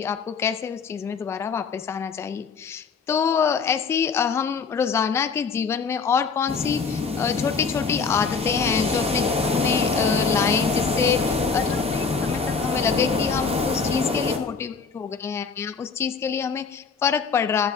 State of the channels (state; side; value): quieter; right; 5.3 dB